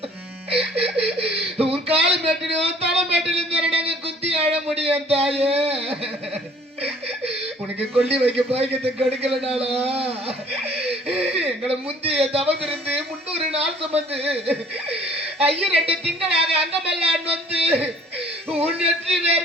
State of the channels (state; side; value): normal; both; correlation 0.55